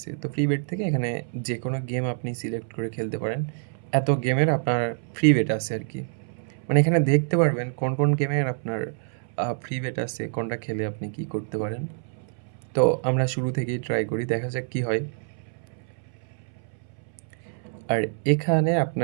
তো ফ্রি বেট থেকে এখানে যেকোনো গেম আপনি সিলেক্ট করে খেলতে পারেন। এত গেমের আপনার ফ্রি বেট আছে আরকি। মানে এখানে দেখতে পারবেন কোন, কোন গেমের আপনার ফ্রি বেট আছে, কোনটা খেলে আপনি কি করতে পারেন। তো আমরা শুরু থেকেই ট্রাই করি। দেখা যাক কি হয়। আর এখানে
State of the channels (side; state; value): left; silent; 61 dB below the other